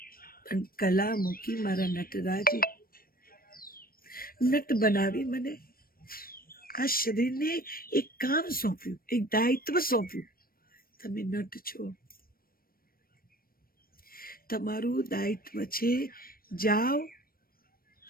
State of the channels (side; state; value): right; late; 0.43 ms